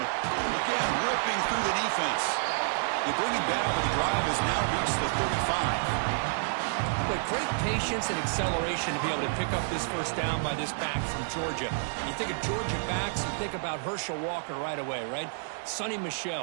again, ripping through the defense. They bring him down, but the drive has now reached the 35. But great patience and acceleration to be able to pick up this first down by this back from Georgia. You think of Georgia backs, you think about Herschel Walker right away, right? Sonny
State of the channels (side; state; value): left; silent; digital silence